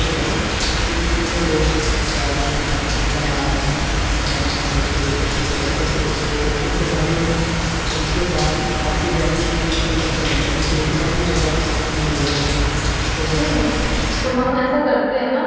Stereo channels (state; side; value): identical; both; correlation 1.00